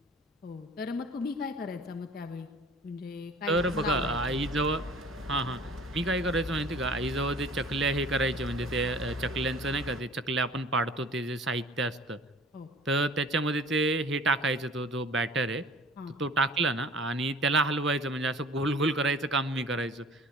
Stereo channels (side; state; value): both; normal; correlation 0.47